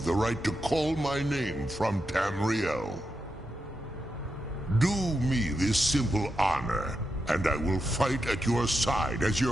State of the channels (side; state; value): both; normal; correlation 0.86